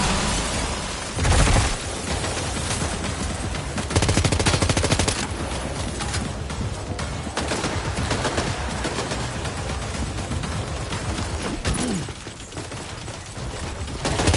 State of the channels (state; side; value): identical; both; correlation 1.00